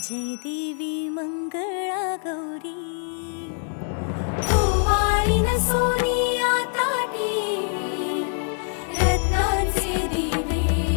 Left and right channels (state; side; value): silent; right; 58 dB below the other